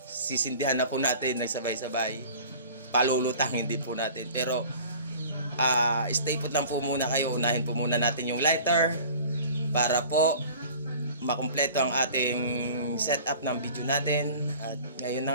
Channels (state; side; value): inverted; both; correlation -0.44